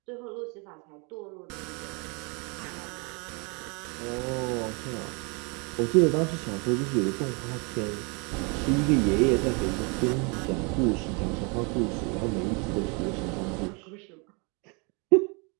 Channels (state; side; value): quieter; left; 32.6 dB